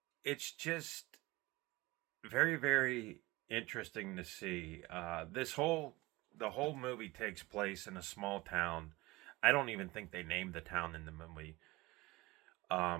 it's just very, very interesting to see. The whole movie takes place in a small town. I don't even think they named the town in the movie.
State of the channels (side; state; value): left; quieter; 21.2 dB